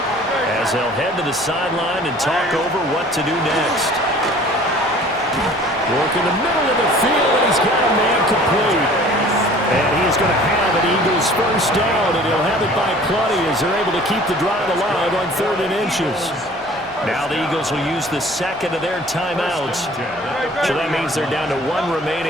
as they'll head to the sideline and talk over what to do next. Work in the middle of the field, and he's got a man complete. And he's going to have an Eagles first down, and he'll have it by plenty as they're able to keep the drive alive on 3rd and inches. Now the Eagles will use the second of their timeouts. So that means they're down to 1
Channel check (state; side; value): normal; both; correlation 0.49